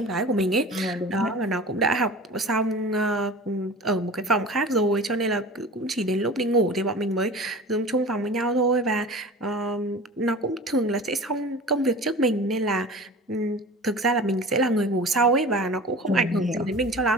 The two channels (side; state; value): both; normal; correlation 0.38